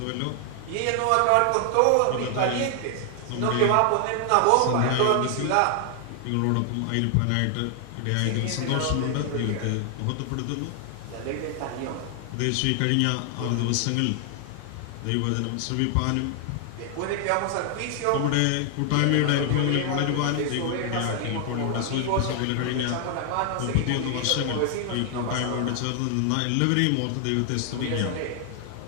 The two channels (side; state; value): both; different; correlation 0.00